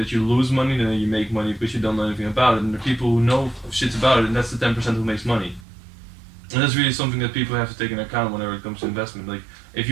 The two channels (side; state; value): left; drops out; at 5.7 s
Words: you lose money, then you make money because you don't know anything about it. And the people who know shit about it, and that's the 10% who makes money. And that's really something that people have to take into account whenever it comes to investment. Like, if